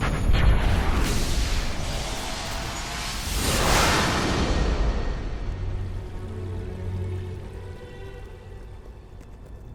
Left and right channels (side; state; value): both; identical; correlation 1.00